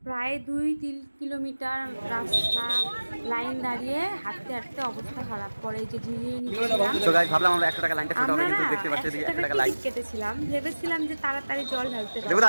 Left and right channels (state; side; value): inverted; both; correlation -1.00